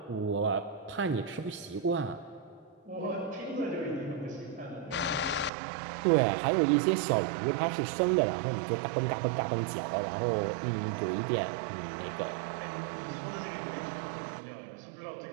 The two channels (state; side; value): drops out; left; at 5.5 s